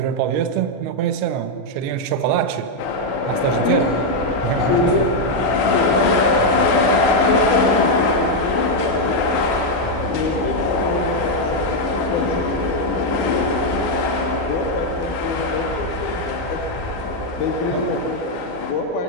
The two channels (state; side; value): late; right; 12 ms